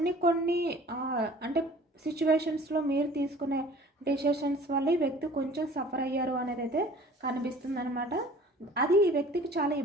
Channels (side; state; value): both; normal; correlation 0.48